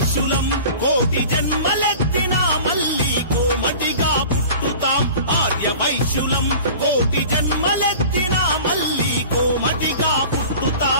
కోటి జన్మలెత్తినా మళ్ళీ కోమటిగా పుట్టుతాం. ఆర్యవైశ్యులం కోటి జన్మలెత్తినా మళ్ళీ కోమటిగా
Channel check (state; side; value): inverted; both; correlation -0.41